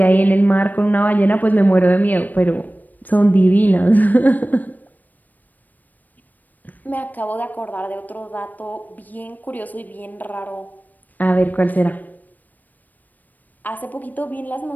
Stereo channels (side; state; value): right; late; 0.085 ms